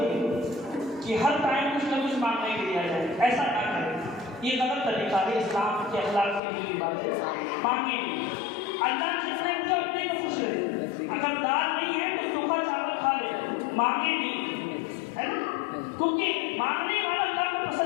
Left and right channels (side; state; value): right; drops out; at 6.4 s